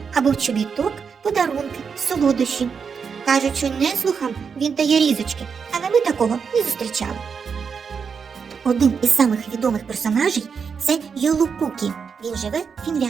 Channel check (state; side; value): quieter; left; 6.1 dB